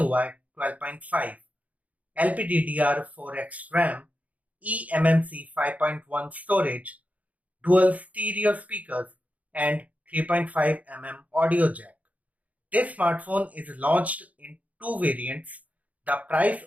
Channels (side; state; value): left; late; 0.071 ms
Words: 12.5, LPDDR4X RAM, eMMC 5.1 storage, dual stereo speakers and 3.5mm audio jack. This smartphone is launched in two variants. The price